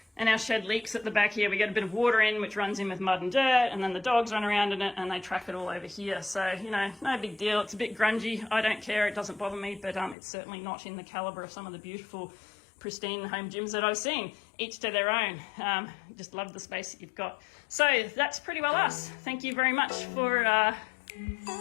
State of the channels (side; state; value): right; drops out; at 10.2 s